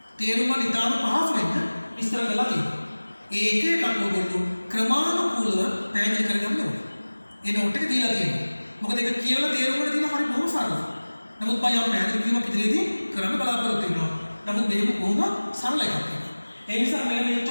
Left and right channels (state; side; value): inverted; both; correlation -1.00